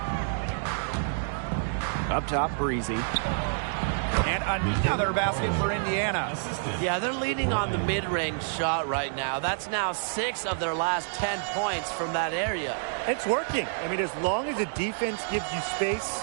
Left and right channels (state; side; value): silent; left; digital silence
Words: Up top, Breezy. And another basket for Indiana. Yeah, they're leaning on the mid-range shot right now. That's now 6 of their last 10 points from that area. It's working. I mean, as long as the defense gives you space,